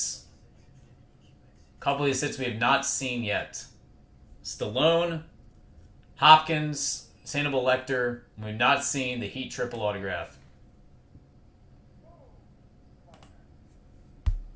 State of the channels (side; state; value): both; identical; correlation 1.00